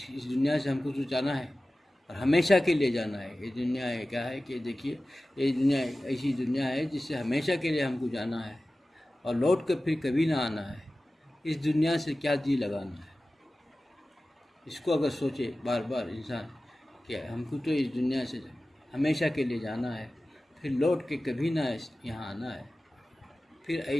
دنیا سے ہم کو جو جانا ہے اور ہمیشہ کے لیے جانا ہے۔ یہ دنیا ہے کیا ہے کہ دیکھیے، یہ دنیا ایسی دنیا ہے جس سے ہمیشہ کے لیے ہم کو جانا ہے اور لوٹ کر پھر کبھی نہ آنا ہے۔ اس دنیا سے کیا جی لگانا ہے؟ اس کو اگر سوچے بار بار انسان کہ ہم کو تو اس دنیا سے ہمیشہ کے لیے جانا ہے، پھر لوٹ کے کبھی نہ یہاں آنا ہے، پھر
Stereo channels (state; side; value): normal; both; correlation 0.96